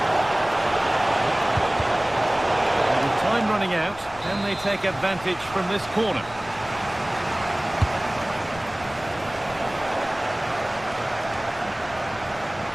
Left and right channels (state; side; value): noise; left; rumble, 20 dB below the sound